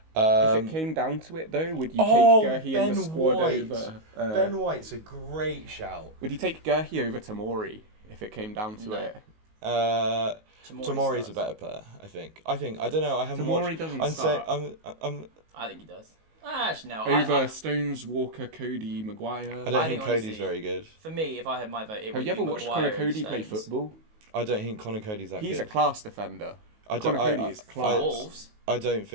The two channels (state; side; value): late; left; 19 ms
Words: If it came down to it, though, would you take Gurhey in the squad over? Ben White's a great shout. Would you take Gurhey over Tamori if it came down to No. it? Tamori's a better player, I think. I don't know. I haven't Tamori watched. doesn't I'm say start. I'm. I think he does. Actually, no. Over Stones, Walker, Cody, Maguire. I don't I think think Cody's honestly- very good. For me, if I had my vote, it Have would you ever be watched Maguire Connor and Cody play Stones. football? I don't think Connor Cody's that He's a good. class defender. I don't. Connor Cody is For class. Wolves. I don't